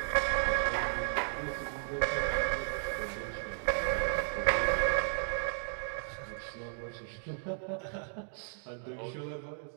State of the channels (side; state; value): left; silent; digital silence